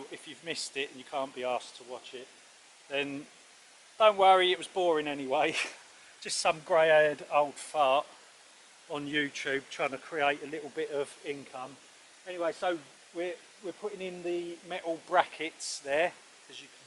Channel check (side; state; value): both; identical; correlation 1.00